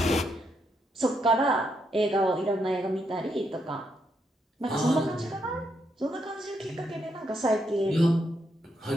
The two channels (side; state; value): both; normal; correlation 0.78